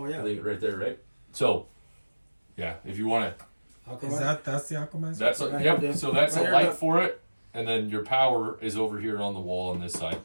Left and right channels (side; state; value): both; inverted; correlation -1.00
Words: I yeah. think right there, right? So, yeah, if you want to, That's the Aquamizer? that's a, Right yep. here, So that's right a here, light look. for it, and then your power is over here on the wall on this side.